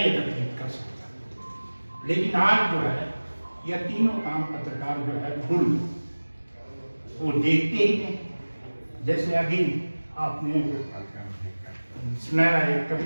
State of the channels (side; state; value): both; inverted; correlation -1.00